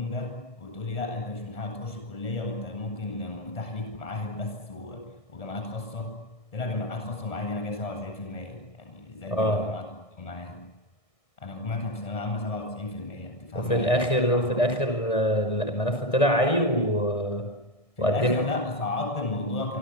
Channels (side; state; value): right; late; 1.6 ms